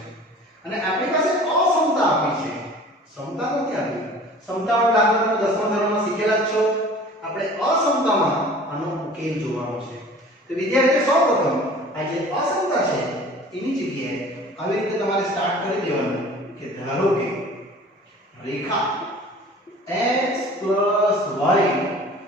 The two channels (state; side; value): normal; both; correlation 0.45